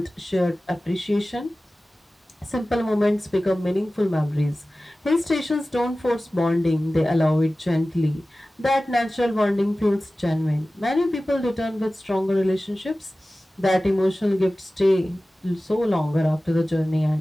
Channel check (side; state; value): both; normal; correlation 0.96